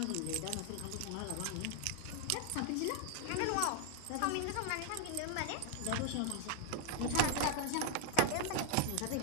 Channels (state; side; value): different; both; correlation 0.00